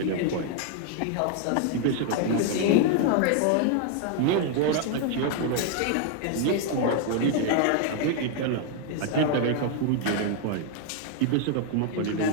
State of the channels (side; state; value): both; different; correlation 0.00